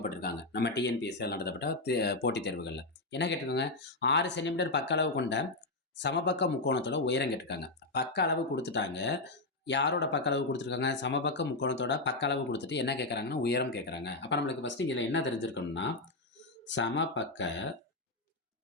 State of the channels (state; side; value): quieter; right; 3.1 dB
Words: நம்ம டிஎன்பிஎஸ்சியில் நடத்தப்பட்ட போட்டித் தேர்வுகளில் என்ன கேட்டிருக்காங்க, 6 சென்டிமீட்டர் பக்க அளவு கொண்ட சமபக்க முக்கோணத்தோட உயரம் கேட்டிருக்காங்க. பக்க அளவு கொடுத்துட்டாங்க. யாரோட பக்க அளவு கொடுத்துருக்காங்க? சமபக்க முக்கோணத்தோட பக்க அளவு கொடுத்துட்டு என்ன கேட்குறாங்கன்னா உயரம் கேட்குறாங்க. அப்போ நம்மளுக்கு ஃபஸ்ட்டு இதில் என்ன தெரிஞ்சிருக்கணும்னா, சமபக்க